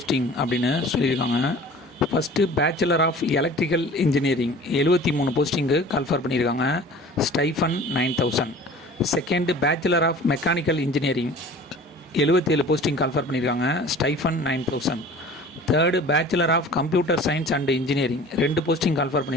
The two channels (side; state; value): both; normal; correlation 0.44